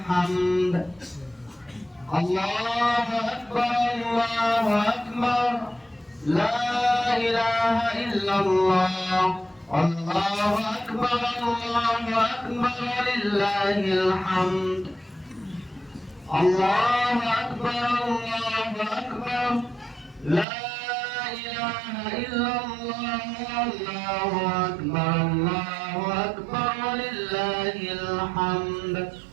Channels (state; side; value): drops out; left; at 20.5 s